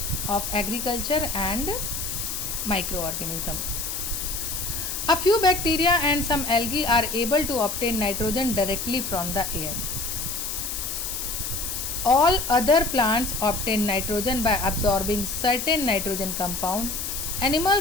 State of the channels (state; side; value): noise; left; hiss, 4 dB below the sound